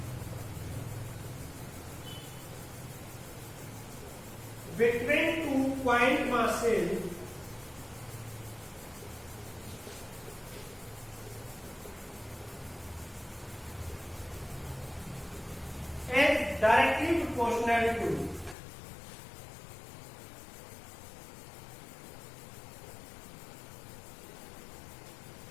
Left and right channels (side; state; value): right; drops out; at 18.6 s